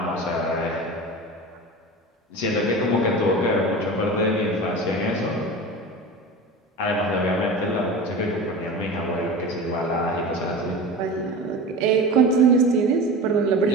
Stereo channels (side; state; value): both; normal; correlation 0.31